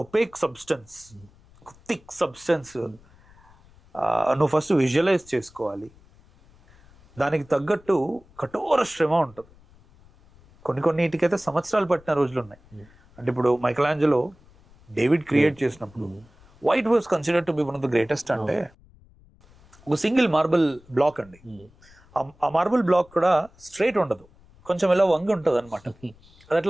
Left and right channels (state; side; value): noise; left; rumble, 27 dB below the sound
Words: ఒపేక్ సబ్స్టెన్స్, థిక్ సబ్స్టెన్స్ నువ్వు ఫస్ట్ విజువలైజ్ చేసుకోవాలి. దానికి తగ్గట్టు కఠోర శ్రమ ఉంటుంది. కొన్నిటికైతే సంవత్సరాలు పట్టిన రోజులు ఉన్నాయి. అంటే ఇప్పుడు మైకలాంజెలో డేవిడ్ క్రియేట్ చేసినప్పుడు white was considered to be one of the greatest. అంటే ఒక సింగిల్ మార్బుల్ బ్లాక్ అండి, ఆ మార్బుల్ బ్లాక్ కూడా స్ట్రైట్ ఉండదు, కొంచెం ఇలా వంగి ఉంటుంది అనమాట. అది